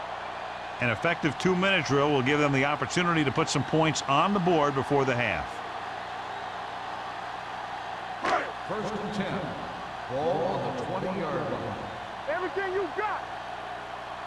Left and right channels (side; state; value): both; identical; correlation 1.00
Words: An effective 2-minute drill will give them the opportunity to put some points on the board before the half. First and 10. Ball on the 20-yard line. Everything you got.